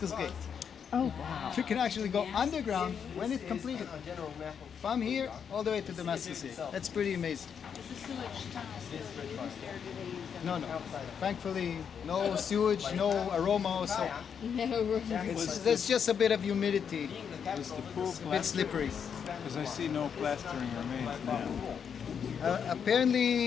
Gate. Oh, wow. You can actually go underground when it's completed. From here all the way to Damascus Gate. That's pretty amazing. Is the sewage tunnel still used, or do they use them? No. Thankfully, no sewage, no aroma, so No, there's just a bit of humidity. Was the pool It's a bit plastered? slippery. Because I see no plastering remains now.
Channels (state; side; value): quieter; right; 7.3 dB